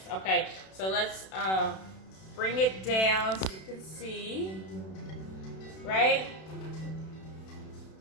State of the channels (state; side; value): late; right; 32 ms